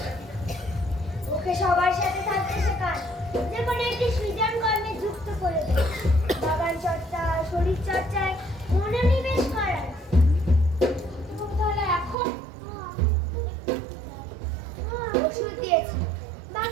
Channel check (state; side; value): drops out; left; at 12.2 s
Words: ওকে সবার সাথে থাকতে শেখান, যে কোনো একটি সৃজন কর্মে যুক্ত করে দেন। বাগান চর্চা, শরীর চর্চায় মনোনিবেশ করান। তাহলে এখন ওষুধ দিয়েছি,